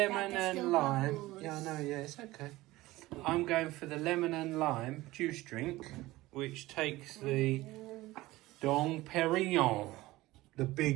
and lime. Bubbles. Yeah, I know, yeah, it's okay. I'm going for the lemon and lime juice drink, which takes the Dom Perignon, the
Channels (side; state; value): left; quieter; 18.4 dB